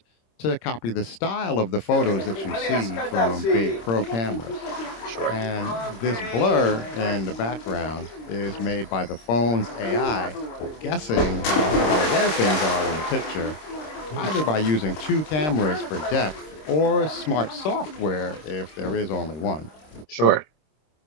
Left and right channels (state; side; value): late; right; 26 ms